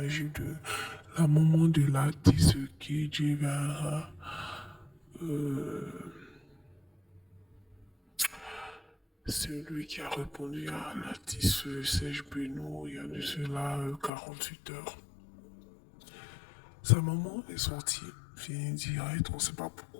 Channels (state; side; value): drops out; right; at 14.1 s